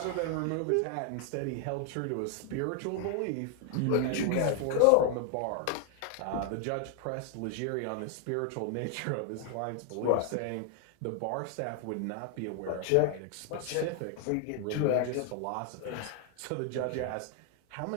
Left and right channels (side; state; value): both; different; correlation 0.00